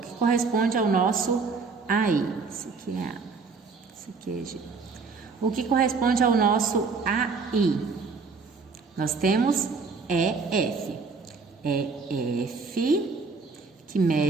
corresponde ao nosso AI? Esse aqui é A, esse aqui é G. O que corresponde ao nosso AI? Nós temos EF. EF, que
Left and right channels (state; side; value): quieter; left; 4.7 dB